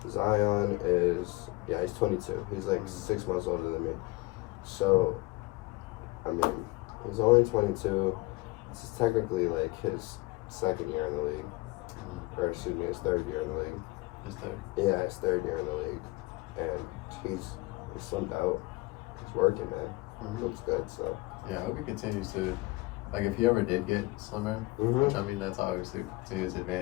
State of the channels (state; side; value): quieter; right; 22.1 dB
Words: Zion is he's 22. He's like 6 months older than me. So, I mean, he's only 22. This is technically like his second year in the league, or excuse me, his third year in the league. His third. Yeah, his third year in the league, and he's slimmed out. He's working, man. Mm-hmm. Looks good. So yeah, I hope he continues to. Like, if he ever did get slimmer, which I mean, that's obviously to his